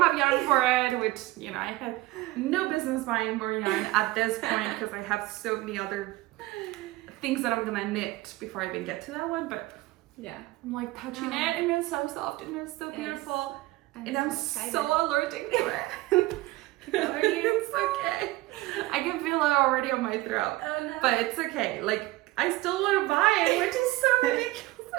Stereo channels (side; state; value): left; quieter; 19.0 dB